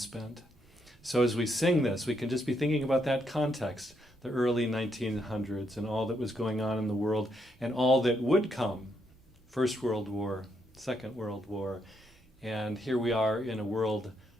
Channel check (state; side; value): normal; both; correlation 0.77